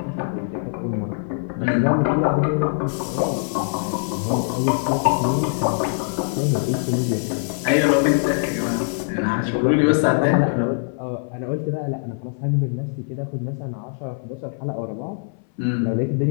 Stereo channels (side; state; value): right; silent; 59 dB below the other